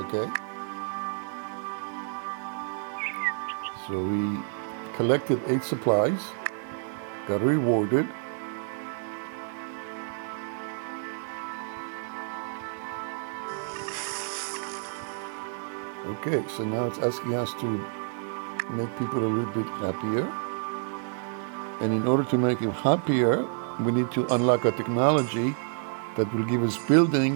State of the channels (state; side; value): silent; left; digital silence